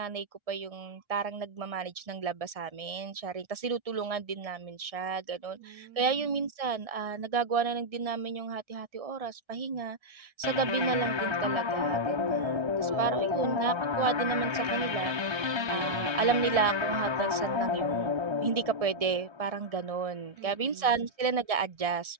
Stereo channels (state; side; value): late; left; 1.6 ms